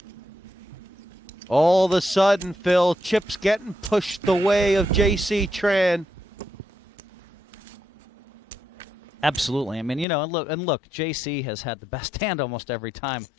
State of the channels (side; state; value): right; drops out; at 10.1 s